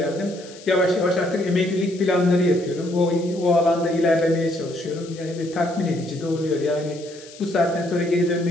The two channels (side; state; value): left; noise; hiss, 20 dB below the sound